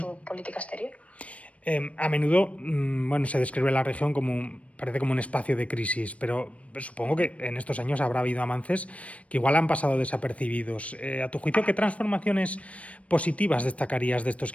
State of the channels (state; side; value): late; right; 0.064 ms